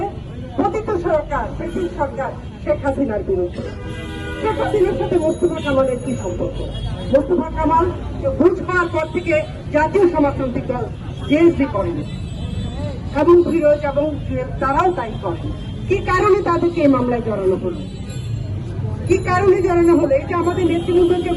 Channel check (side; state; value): both; identical; correlation 1.00